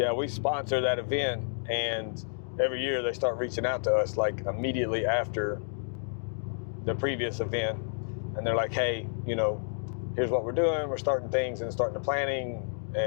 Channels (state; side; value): silent; right; digital silence